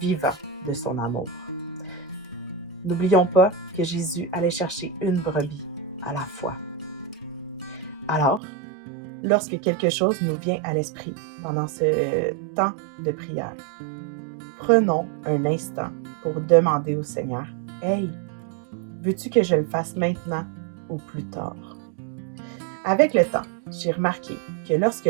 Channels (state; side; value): drops out; left; at 8.4 s